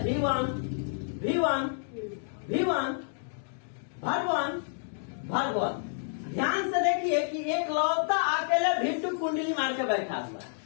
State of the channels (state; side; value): silent; right; digital silence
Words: V1 verb 1। ध्यान से देखिए कि एक लौता अकेले V2 कुंडली मार के बैठा हुआ है,